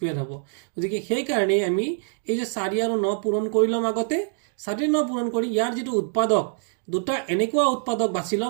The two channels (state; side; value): silent; left; digital silence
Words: হ'ব গতিকে সেই কাৰণে আমি এই যে 4 আৰু 9 পূৰণ কৰিলম আগতে 4 9 পূৰণ কৰি ইয়াৰ যেটো উৎপাদক দুটা এনেকুৱা উৎপাদক বাছিলম